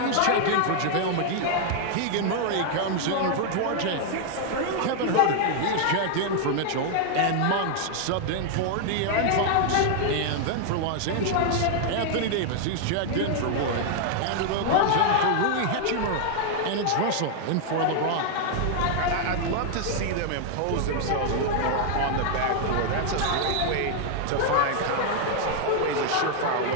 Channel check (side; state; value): both; different; correlation 0.00